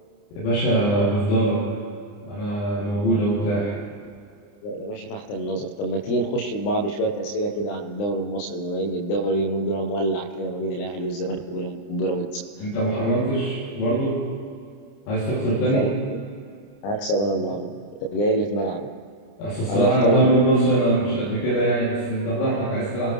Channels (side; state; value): right; late; 29 ms